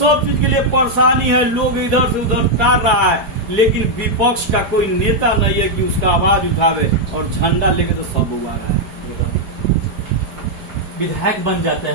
चीज के लिए परेशानी है, लोग इधर से उधर टार रहा है, लेकिन विपक्ष का कोई नेता नहीं है कि उसका आवाज उठावे, और झंडा लेके तो सब उगा रहा है। विधायक बन जाते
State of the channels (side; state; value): left; late; 4.8 ms